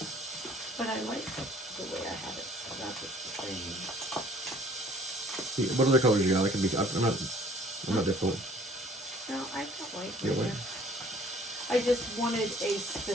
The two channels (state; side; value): normal; both; correlation 0.55